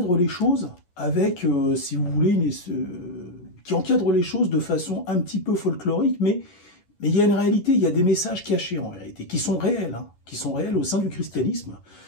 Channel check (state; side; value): late; right; 11 ms